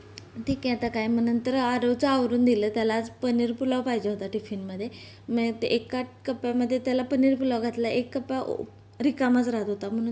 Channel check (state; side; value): identical; both; correlation 1.00